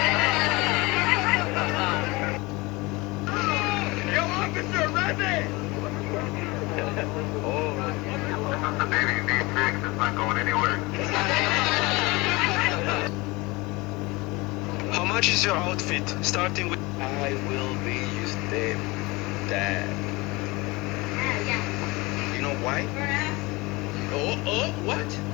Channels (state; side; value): quieter; right; 23.6 dB